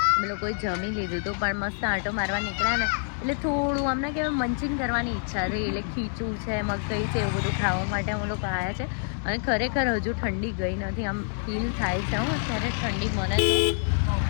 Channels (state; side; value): silent; right; digital silence